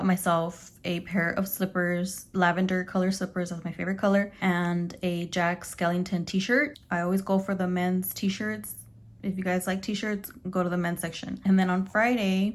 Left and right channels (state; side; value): identical; both; correlation 1.00